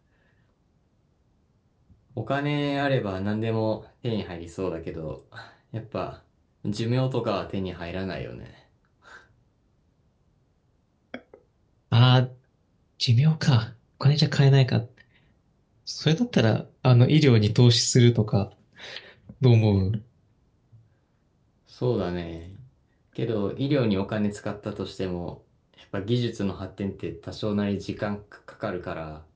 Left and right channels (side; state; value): both; identical; correlation 1.00